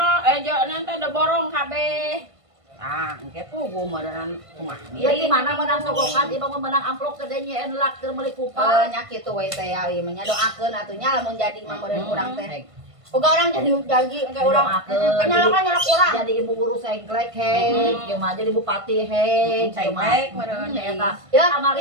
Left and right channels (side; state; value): left; late; 1.5 ms